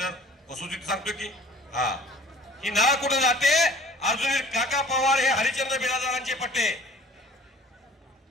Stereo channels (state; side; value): normal; both; correlation 0.49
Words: वसुलीत सांगतो की हा ही ना कुठं जाते. अजून काका पवार हे हरिश्चंद्र बिराजदारांचे पट्टे.